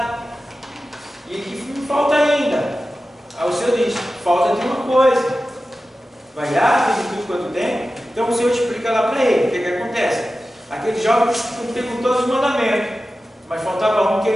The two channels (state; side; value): normal; both; correlation 0.94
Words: e que me falta ainda. Aí o Senhor diz, falta de uma coisa, vai lá, fez tudo quanto tem. Então o Senhor explica lá para ele, o que acontece? Aquele jovem cumpria com todos os mandamentos, mas faltava um que